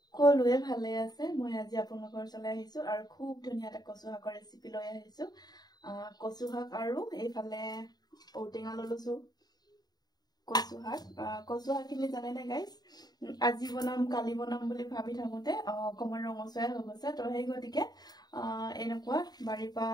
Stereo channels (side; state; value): right; late; 0.19 ms